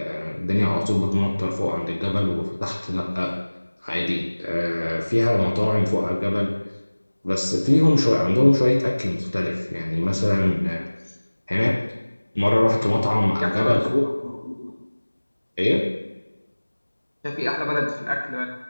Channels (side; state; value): both; inverted; correlation -1.00